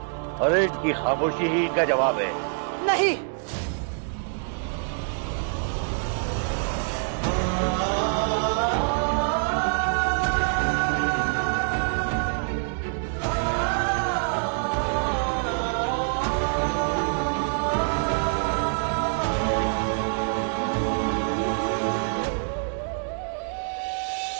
अरे इनकी खामोशी ही इनका जवाब है। नहीं,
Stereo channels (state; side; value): silent; left; 61 dB below the other